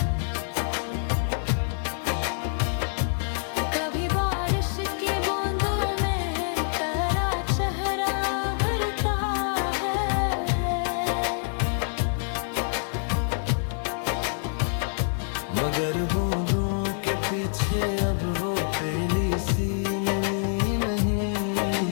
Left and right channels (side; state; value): right; silent; 61 dB below the other